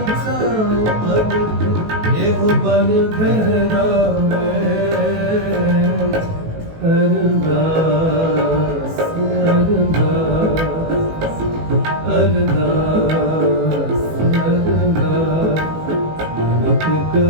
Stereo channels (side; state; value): left; late; 18 ms